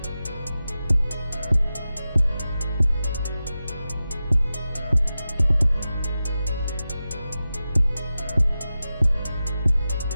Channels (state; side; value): inverted; both; correlation -0.93